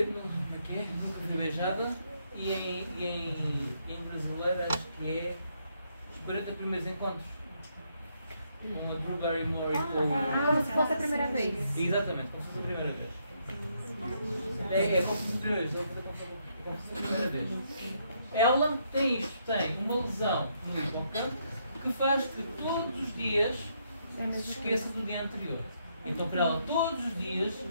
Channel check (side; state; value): both; inverted; correlation -0.75